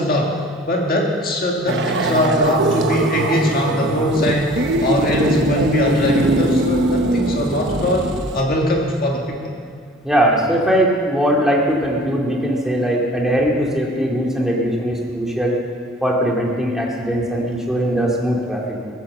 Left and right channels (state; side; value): normal; both; correlation 0.48